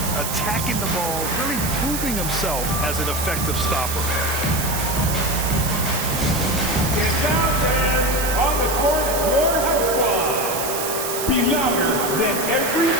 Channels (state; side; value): noise; right; hiss, 4 dB below the sound